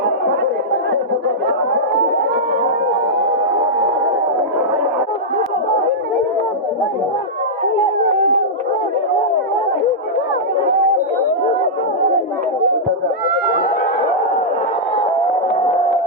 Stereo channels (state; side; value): normal; both; correlation -0.10